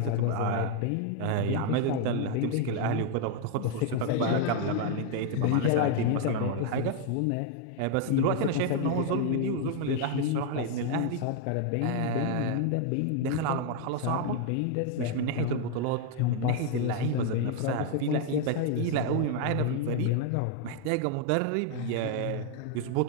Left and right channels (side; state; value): both; different; correlation 0.00